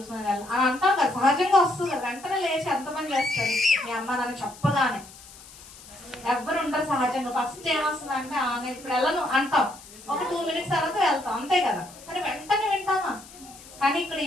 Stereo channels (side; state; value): left; noise; hiss, 19 dB below the sound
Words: వెళ్ళను అని అంటాం కదా, సహజంగా వస్తుంది. వెంటనే లేచి ఎంతమంది చేస్తారు, మీ అమ్మ నన్ను చెప్పగానే ఎవ్వరు ఉంటారు సహజంగా. ఫస్ట్ ఏమొస్తుంది అంటే నేను ఇప్పుడు వెళ్ళను అంటాం, ఒక 2 మినిట్స్ తర్వాత వెళ్తాం, అంతే కదా. కానీ వెంటనే వింటామా? కానీ ఇక్కడ